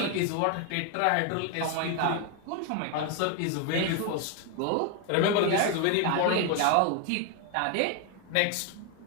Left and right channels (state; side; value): different; both; correlation 0.01